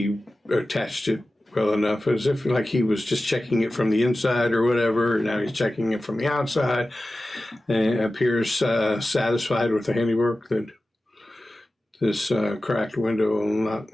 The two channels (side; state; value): both; normal; correlation 0.95